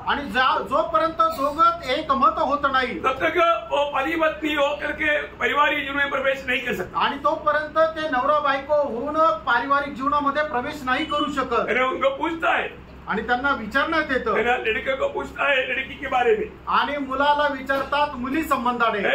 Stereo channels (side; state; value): both; identical; correlation 1.00